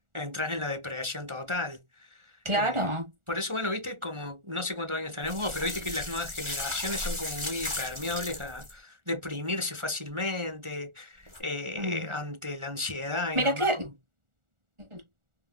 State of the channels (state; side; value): late; left; 1.4 ms